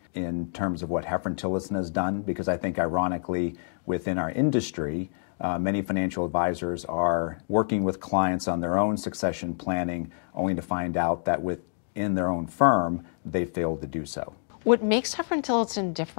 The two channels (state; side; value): silent; right; digital silence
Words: in terms of what Hefren-Tillotson has done, because I think, ironically, within our industry, many financial advisors are working with clients on their own succession planning, only to find out that within their own firm, they failed to do so. What makes Hefren-Tillotson